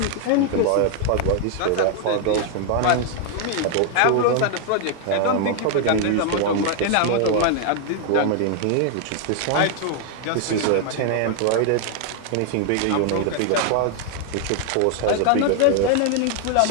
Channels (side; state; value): both; different; correlation 0.00